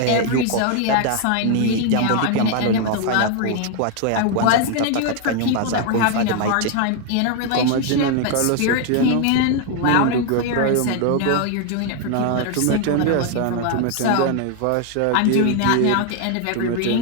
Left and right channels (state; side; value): different; both; correlation 0.00